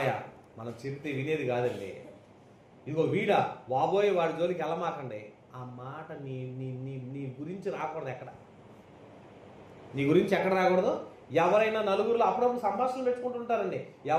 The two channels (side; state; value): both; identical; correlation 1.00